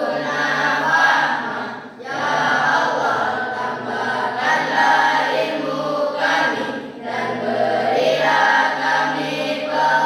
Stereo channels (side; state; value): both; identical; correlation 1.00